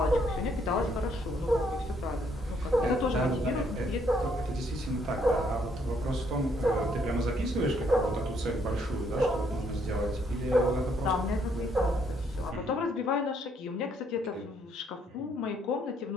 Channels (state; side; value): normal; both; correlation 0.69